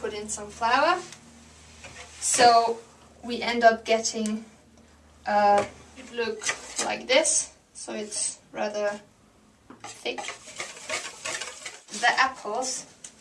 in some flour. So we end up getting it look like this. So it's rather thick. The apples,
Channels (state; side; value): identical; both; correlation 1.00